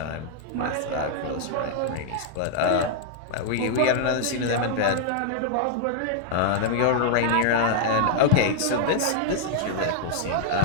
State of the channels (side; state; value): both; different; correlation -0.01